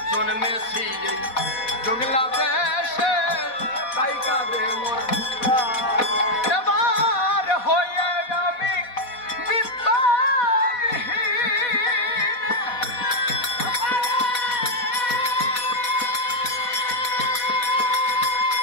জন্মেছি এই জঙ্গিলা দেশে তাই কাঁদে মোর প্রাণ। এবার হয়ে আমি বিত্তবিহীন,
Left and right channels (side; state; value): right; late; 4.1 ms